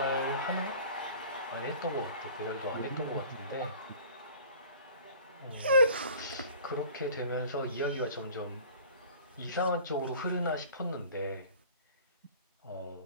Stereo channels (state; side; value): inverted; both; correlation -0.46